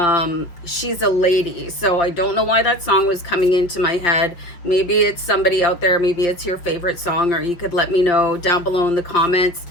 She's a Lady. So I don't know why that song was coming into my head. Maybe it's somebody out there. Maybe it's your favorite song, or you could let me know down below in the comments.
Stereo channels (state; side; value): late; right; 5.9 ms